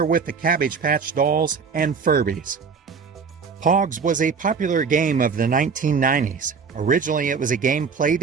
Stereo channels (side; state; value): left; quieter; 5.6 dB